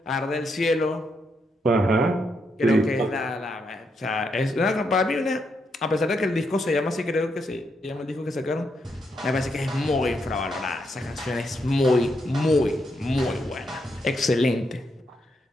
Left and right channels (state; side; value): normal; both; correlation 0.80